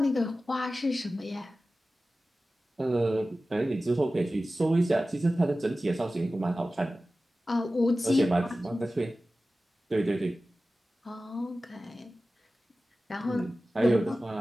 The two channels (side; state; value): both; normal; correlation 0.95